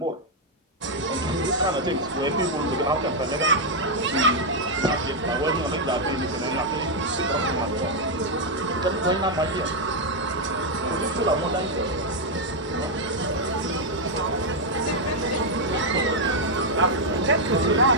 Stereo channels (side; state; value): both; normal; correlation -0.01